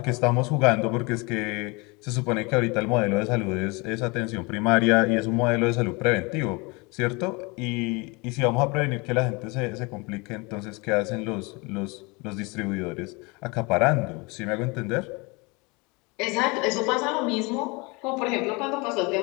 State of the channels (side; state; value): right; quieter; 27.5 dB